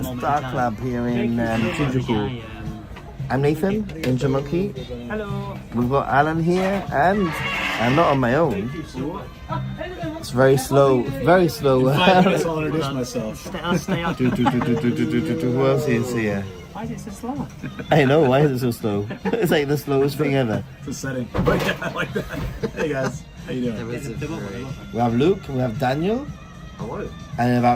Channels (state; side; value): identical; both; correlation 1.00